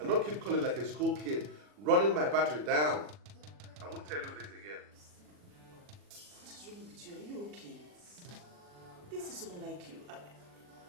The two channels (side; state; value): left; late; 40 ms